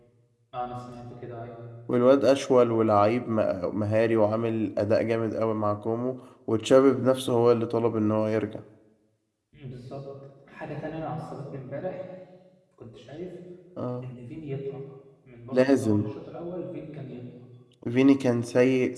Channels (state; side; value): identical; both; correlation 1.00